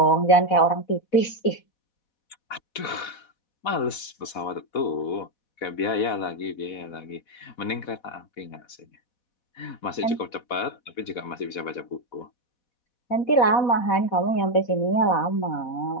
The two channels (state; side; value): late; right; 4.1 ms